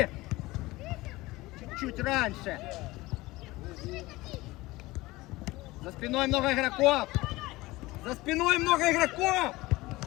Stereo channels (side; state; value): right; quieter; 20.0 dB